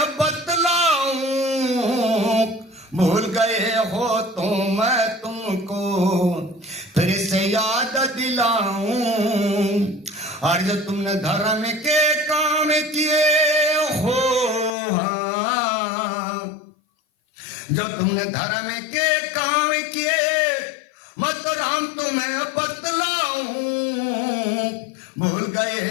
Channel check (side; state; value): right; drops out; at 14.7 s